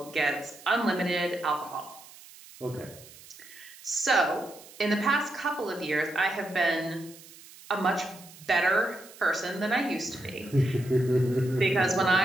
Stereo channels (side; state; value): right; noise; hiss, 20 dB below the sound